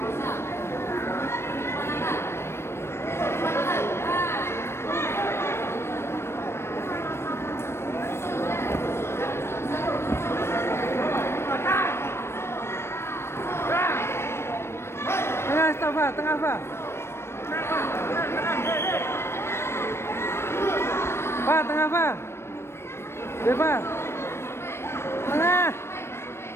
Tengah, stop, Pak. Tengah, Pak. Pak, tengah, Pak. Ya, Pak. Tengah.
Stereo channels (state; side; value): late; right; 0.12 ms